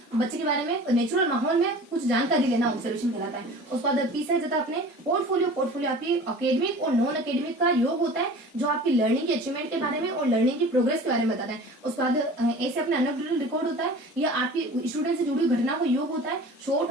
बच्चे के बारे में नेचुरल माहौल में कुछ जानकारी लेना ऑब्जर्वेशन कहलाता है। उसके बाद पी से जाता अपने पोर्टफोलियो आपकी अकेडमिक और नॉन अकेडमिक का योग होता है, जो आपकी लर्निंग की अचीवमेंट के बारे में और लर्निंग की प्रोग्रेस के बारे में बताता है। उसके बाद ऐसे अपने एनेक्डोटल रिकॉर्ड होता है, यह आपकी स्टूडेंट से जुड़ी घटना को योग होता है,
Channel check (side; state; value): both; normal; correlation 0.41